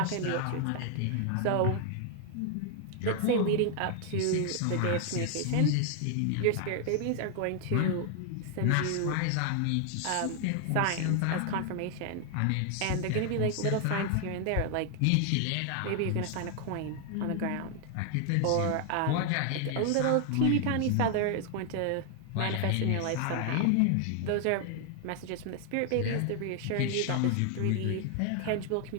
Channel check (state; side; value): different; both; correlation 0.00